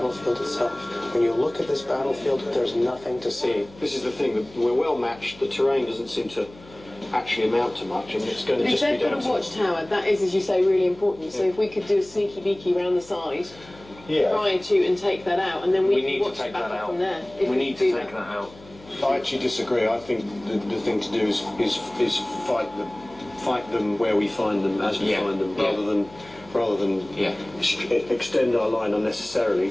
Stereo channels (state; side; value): noise; left; hum, 22 dB below the sound